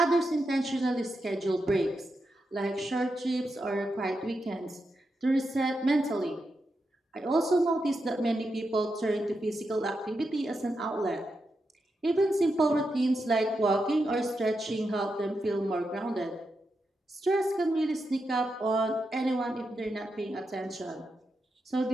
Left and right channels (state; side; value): normal; both; correlation 0.86